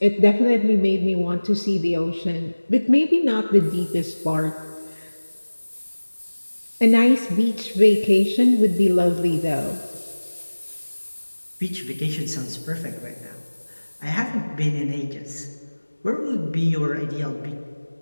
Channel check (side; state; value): both; inverted; correlation -1.00